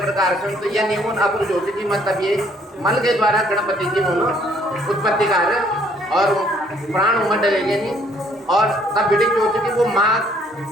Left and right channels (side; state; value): both; normal; correlation 0.64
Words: प्रकार से तो यह नियमन अपन जो कि मतलब ये मल के द्वारा गणपति की उत्पत्ति कार्य और प्राण उमड़ डलेंगे नहीं और तब बेटी जो कि वो माँ